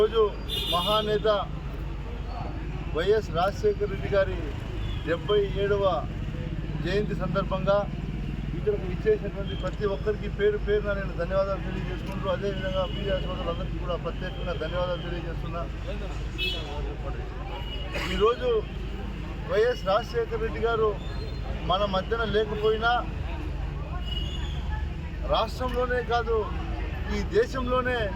మహానేత వైఎస్ రాజశేఖర రెడ్డి గారి 77వ జయంతి సందర్భంగా ఇక్కడికి ఇచ్చేసినటువంటి ప్రతి ఒక్కరికి పేరు పేరున నేను ధన్యవాదాలు తెలియజేసుకుంటూ, అదేవిధంగా మీడియా సోదరులందరికీ కూడా ప్రత్యేకంగా ధన్యవాదాలు తెలియజేస్తున్నా. ఈరోజు వైఎస్ రాజశేఖర రెడ్డి గారు మన మధ్యన లేకపోయినా రాష్ట్రంలోనే కాదు ఈ దేశంలోనే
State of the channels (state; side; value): identical; both; correlation 1.00